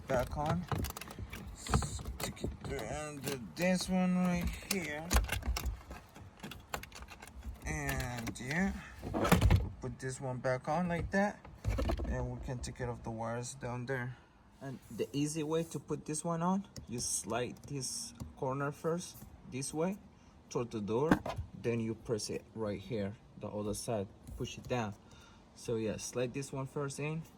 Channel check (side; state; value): both; identical; correlation 1.00